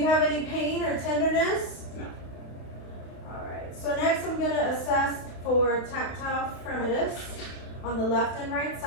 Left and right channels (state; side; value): late; right; 31 ms